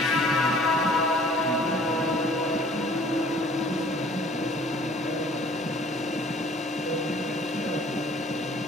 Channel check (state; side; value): normal; both; correlation 0.53